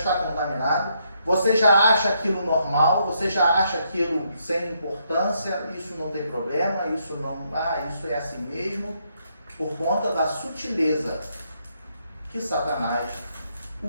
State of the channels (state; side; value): inverted; both; correlation -0.75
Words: contaminada, você já acha aquilo normal, você já acha aquilo sem importância, isso não tem problema, isso é assim mesmo, por conta da sutileza que Satanás